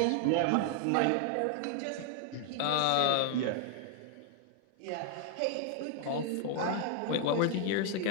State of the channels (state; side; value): different; both; correlation 0.00